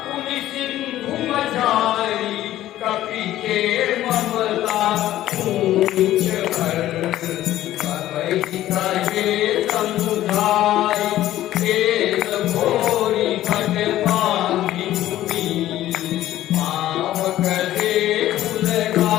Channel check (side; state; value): right; quieter; 13.9 dB